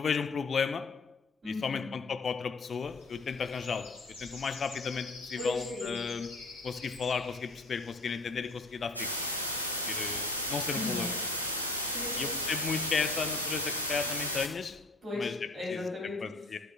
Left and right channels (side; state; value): right; quieter; 3.4 dB